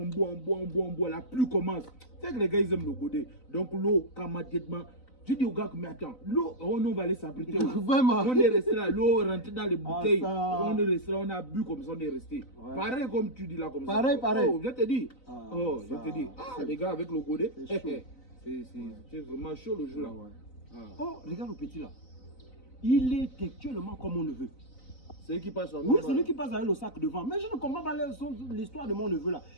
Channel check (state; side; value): late; right; 4.0 ms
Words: boit. La pluie commence. C'est que les gars, ils aiment le godet. Donc l'eau, immédiatement. Je dis aux gars, mais attends, l'eau, on va aller s'abriter. Vraiment. On est resté là, l'eau est rentrée dans les bouteilles. ça. On est resté là, on a bu comme ça, on est resté. Ouais. Pareil comme tu dis là, comme Pareil. ça. Oh, je te dis. Ah, Je te dis. Ah, les gars, avec le godet, c'est chaud. c'est vraiment chaud le jour là. Ah. Oh, regarde le petit là. Il est actuellement comme on le veut. C'est lui qui passe en Oui, c'est lui qui passe avec le sac devant. Mais je ne comprends pas l'histoire de mon neveu là.